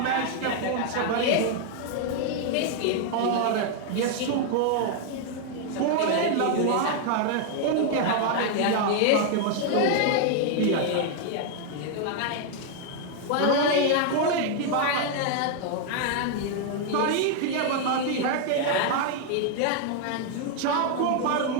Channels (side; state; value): both; different; correlation 0.00